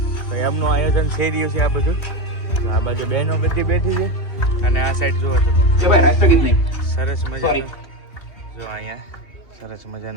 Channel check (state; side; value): late; right; 2.8 ms